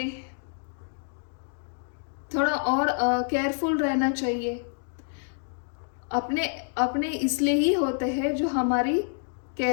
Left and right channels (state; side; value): silent; right; 60 dB below the other